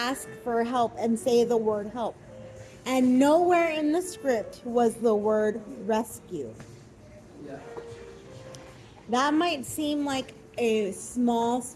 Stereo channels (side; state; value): both; identical; correlation 1.00